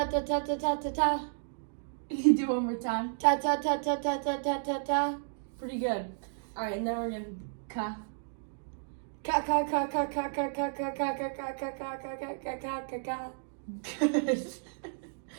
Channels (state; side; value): silent; left; digital silence